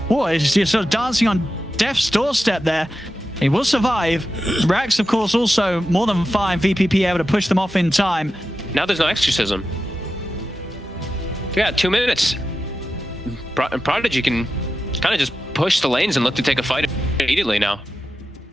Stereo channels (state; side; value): normal; both; correlation 0.91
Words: he's sort of dancing on death's doorstep there. He will survive. Rax, of course, also more than fine. VPP able to push them off in time. Now there's no exorcism. Yeah, 2 minutes. Prodigy can kind of just push the lanes and look to take a fight immediately now.